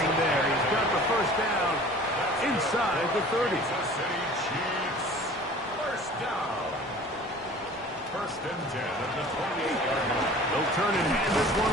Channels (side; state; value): both; normal; correlation 0.45